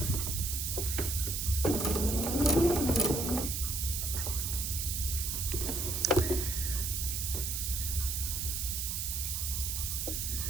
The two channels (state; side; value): noise; right; hiss, 1 dB below the sound